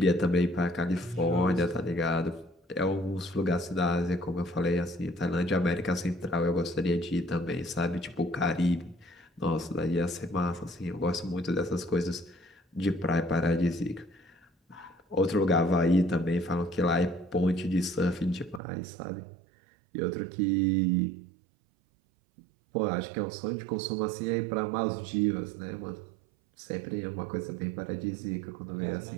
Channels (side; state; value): left; drops out; at 18.6 s